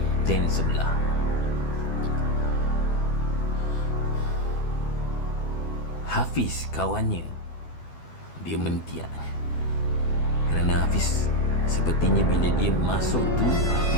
sebelah. Hafiz kawannya, dia mentiak kerana Hafiz sepertinya bila dia masuk tu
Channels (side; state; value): right; late; 12 ms